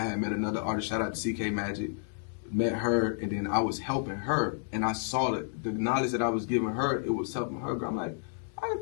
met another artist, shout out to CK Magic, met her, and then I was helping her, and I saw that the knowledge that I was giving her, it was helping her grow. I'm like, I can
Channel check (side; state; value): right; silent; 57 dB below the other